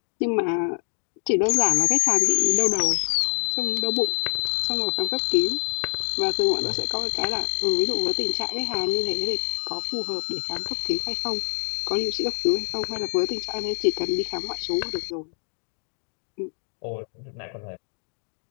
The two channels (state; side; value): silent; right; digital silence